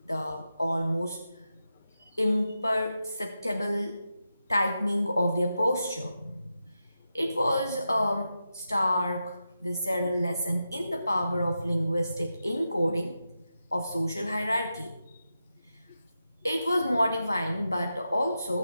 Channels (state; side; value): inverted; both; correlation -0.89